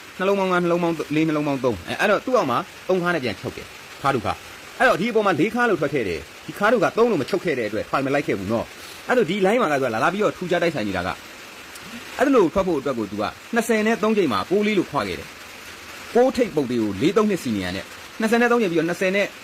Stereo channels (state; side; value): identical; both; correlation 1.00